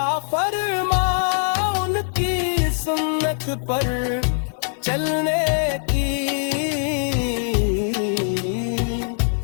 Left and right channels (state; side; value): silent; right; 64 dB below the other